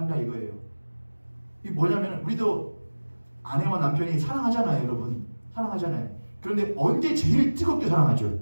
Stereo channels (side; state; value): both; inverted; correlation -1.00